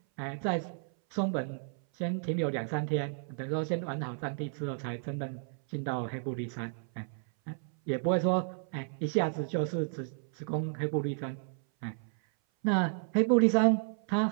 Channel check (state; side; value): silent; left; 56 dB below the other